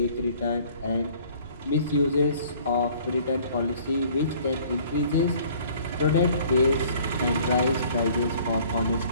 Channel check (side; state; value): both; inverted; correlation -0.54